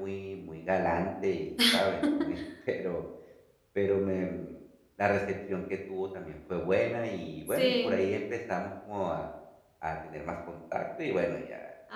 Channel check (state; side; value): identical; both; correlation 1.00